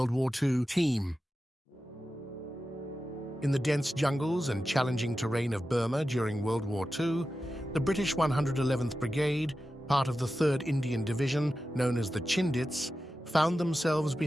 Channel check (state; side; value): normal; both; correlation 0.92